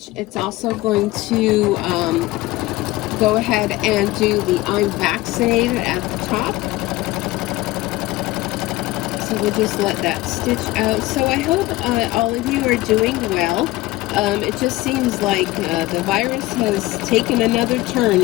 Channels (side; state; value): right; quieter; 18.8 dB